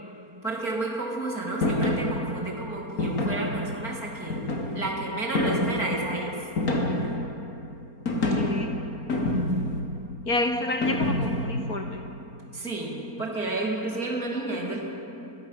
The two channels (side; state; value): right; late; 4.4 ms